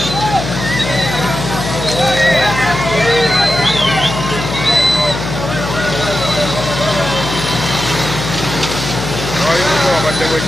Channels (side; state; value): left; noise; hum, 6 dB below the sound